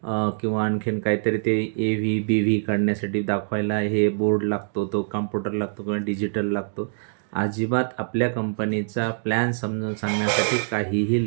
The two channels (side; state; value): left; silent; digital silence